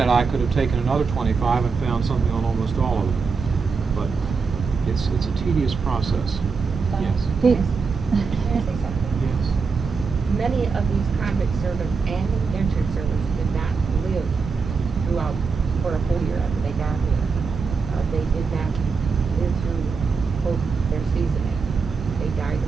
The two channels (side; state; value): left; quieter; 5.0 dB